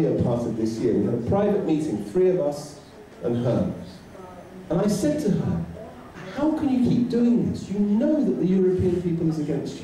part of this year. We had a private meeting, 3 of us and her. And I said to her, how can you keep doing this? You know that the European people is against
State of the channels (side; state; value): both; identical; correlation 1.00